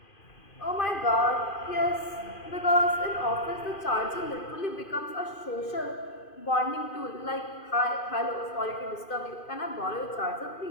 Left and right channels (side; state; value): right; late; 2.5 ms